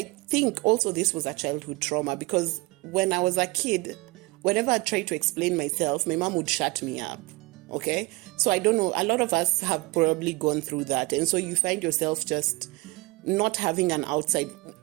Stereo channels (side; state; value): left; quieter; 24.2 dB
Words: think also this was a childhood trauma because when I was a kid, whenever I tried to explain myself, my mom would shut me up. Okay? So I don't know. A lot of us have probably gone through that. And so you find yourself just not having an outside.